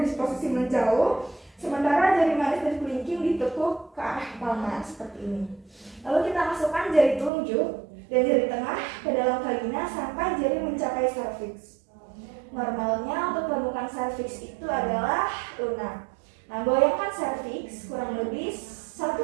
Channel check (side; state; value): left; drops out; at 7.3 s